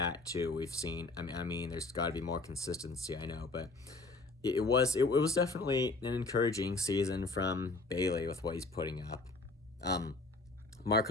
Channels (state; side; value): quieter; right; 3.4 dB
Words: too. We've seen. I mean, there's got to be more consistency. I know, but it was definitely an encouraging season from Bailey with what he's putting up.